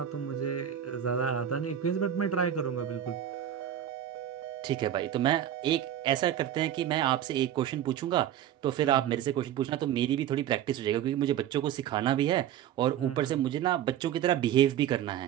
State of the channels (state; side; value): quieter; left; 10.7 dB